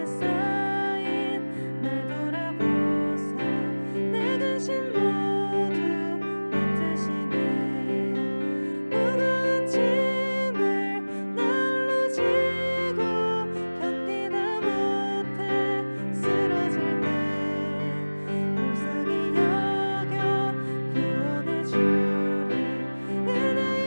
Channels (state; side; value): inverted; both; correlation -1.00